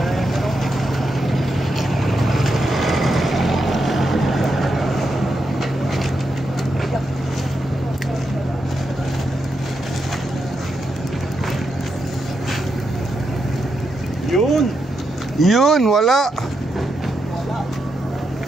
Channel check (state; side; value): normal; both; correlation 0.84